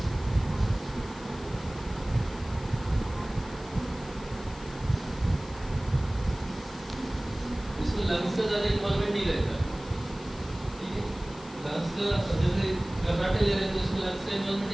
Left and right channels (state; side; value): noise; left; hiss, 19 dB below the sound